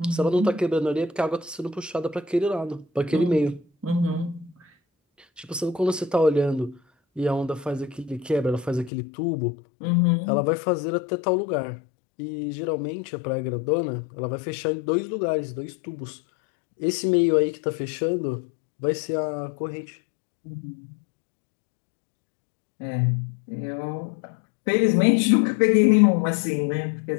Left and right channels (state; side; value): drops out; right; at 8.9 s